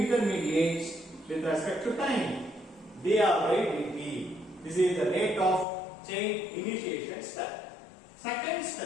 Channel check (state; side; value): drops out; right; at 5.7 s